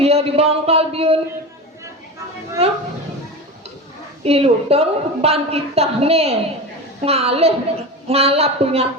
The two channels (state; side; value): normal; both; correlation 0.26